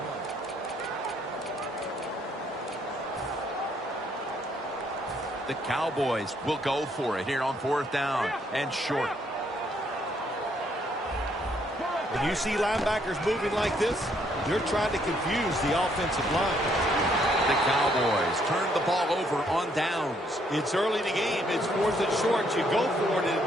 The Cowboys will go for it here on 4th down and short. When you see linebackers moving like this, they're trying to confuse the offensive line. The Cowboys turn the ball over on downs. It's early in the game. It's 4th and short. You go for it and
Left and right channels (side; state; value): both; normal; correlation 0.70